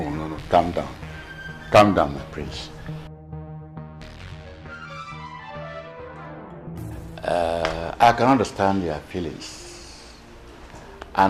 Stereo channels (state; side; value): identical; both; correlation 1.00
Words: Calm down. Calm down, my prince. I can understand your feelings